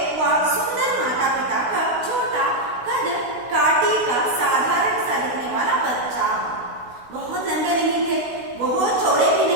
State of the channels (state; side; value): late; left; 16 ms